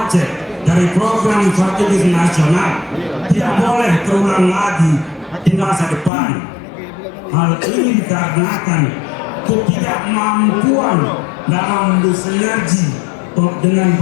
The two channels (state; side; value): drops out; right; at 6.1 s